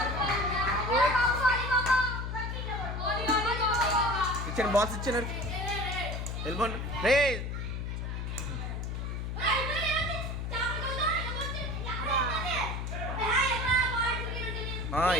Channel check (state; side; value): noise; left; hum, 4 dB below the sound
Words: ఇచ్చాను బాల్స్ ఇచ్చాను వెళ్ళిపోండి రే.